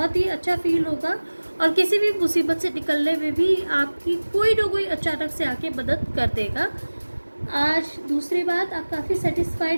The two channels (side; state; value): both; inverted; correlation -1.00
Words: ही अच्छा फील होगा, और किसी भी मुसीबत से निकलने में भी आपकी कोई ना कोई अचानक से आके मदद कर देगा। आज दूसरी बात, आप काफ़ी